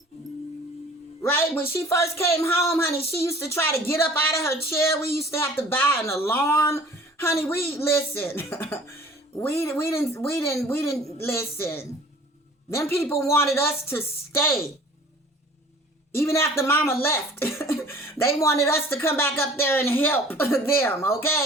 Right? When she first came home, honey, she used to try to get up out of her chair. We used to have to buy an alarm. Honey, listen. we didn't listen. Them people wanted us to stay. Even after mama left. They wanted us to come back up there and help them,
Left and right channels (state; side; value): normal; both; correlation 0.48